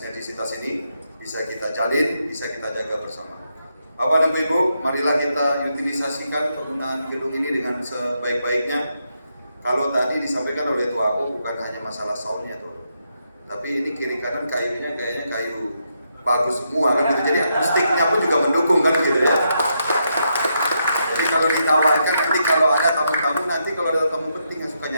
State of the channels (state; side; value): inverted; both; correlation -0.80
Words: ini bisa kita jalin, bisa kita jaga bersama. Bapak dan Ibu, marilah kita utilisasikan penggunaan gedung ini dengan sebaik-baiknya. Kalau tadi disampaikan oleh Tua Aku bukan hanya masalah soundnya tuh, tapi ini kiri kanan kayunya kayaknya kayu bagus semua kan gitu. Jadi akustiknya pun juga mendukung kan gitu ya. Jadi kalau ditawarkan nanti kalau ada tamu-tamu, nanti kalau ada tamu penting yang suka